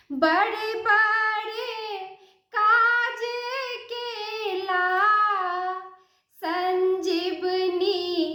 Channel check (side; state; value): both; identical; correlation 1.00